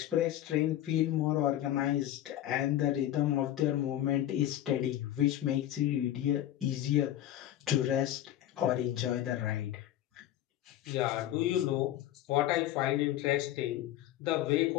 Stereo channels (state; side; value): quieter; right; 12.8 dB